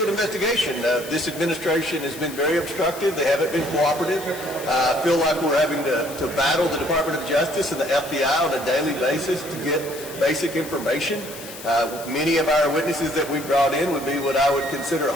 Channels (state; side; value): noise; left; hiss, 14 dB below the sound